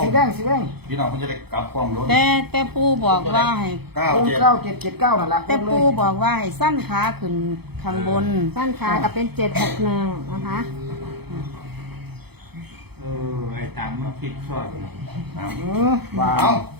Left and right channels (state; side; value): late; left; 0.97 ms